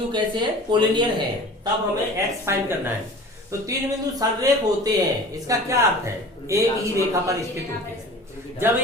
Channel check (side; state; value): both; normal; correlation 0.41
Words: कैसे है? कोलिनियर है। तब हमें x फाइंड करना है। तो 3 बिंदु संरेख होते हैं, इसका क्या अर्थ है? एक ही रेखा पर स्थित होते हैं। जब